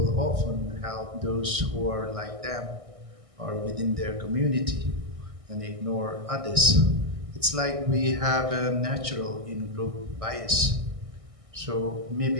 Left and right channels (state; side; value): late; left; 1.6 ms